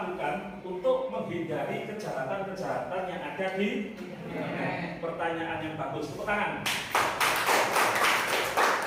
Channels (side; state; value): both; identical; correlation 1.00